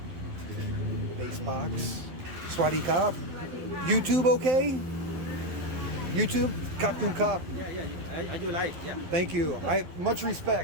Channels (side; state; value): left; late; 11 ms